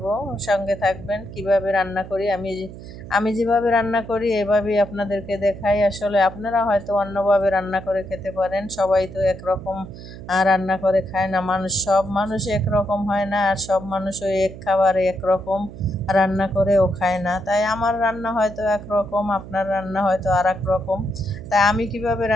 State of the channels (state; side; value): noise; right; hum, 14 dB below the sound